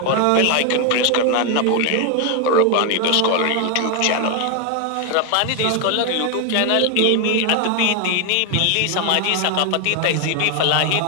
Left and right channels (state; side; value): different; both; correlation 0.01